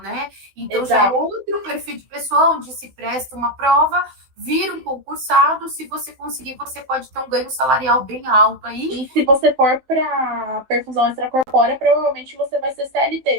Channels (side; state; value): left; late; 15 ms